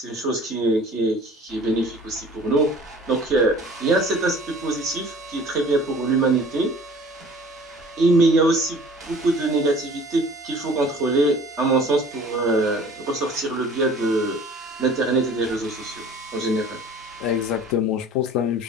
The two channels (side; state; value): both; normal; correlation 0.48